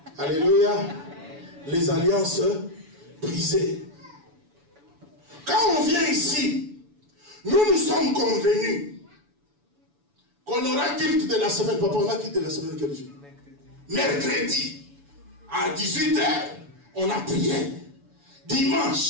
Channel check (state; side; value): late; left; 7.0 ms